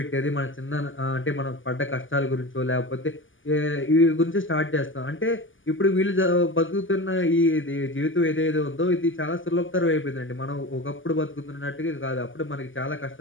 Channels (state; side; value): late; right; 0.57 ms